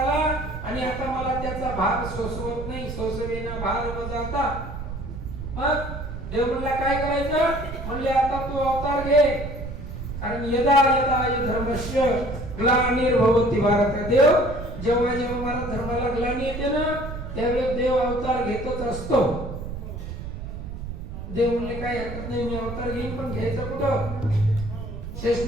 आणि आता मला त्याचा भार सोसवत नाही, सोसवेना भार वजाता. मग देव म्हणला काय करायचं, म्हणले आता तू अवतार घे, कारण यदा यदा धर्मस्य ग्लानिर्भवति भारत. देव जेव्हा जेव्हा मला धर्माला ग्लानी येते ना त्यावेळेस देव अवतार घेतच असतो. देव म्हणले काय हरकत नाही, मी अवतार घेईन, पण घ्यायचं कुठं.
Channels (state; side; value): noise; right; rumble, 8 dB below the sound